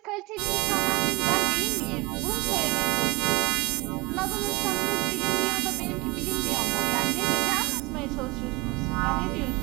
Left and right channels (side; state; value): left; quieter; 24.7 dB